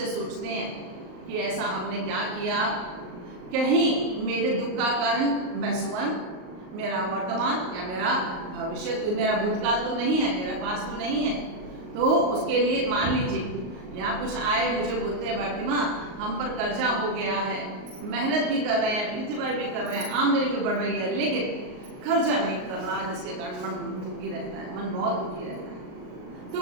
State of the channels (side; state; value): left; late; 38 ms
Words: सोचते हैं कि ऐसा हमने क्या किया, कहीं मेरे दुख का कारण मैं स्वयं, मेरा वर्तमान या मेरा भविष्य, मेरा भूतकाल तो नहीं है, मेरा पास तो नहीं है। तो उसके लिए मान लीजिए यहाँ कुछ आए, मुझे बोलते हैं भारती माँ हम पर कर्जा हो गया है, मेहनत भी कर रहे हैं, पितृवाई भी कर रहे हैं, आमदनी भी बढ़ रही है, लेकिन खर्चा नहीं कर रहा, जिसके कारण मन दुखी रहता है, मन बहुत दुखी रहता है।